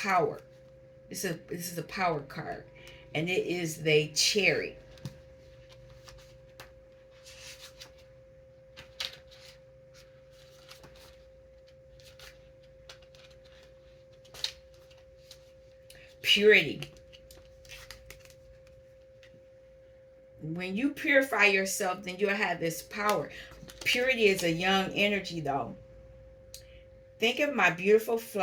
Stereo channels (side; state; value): both; identical; correlation 1.00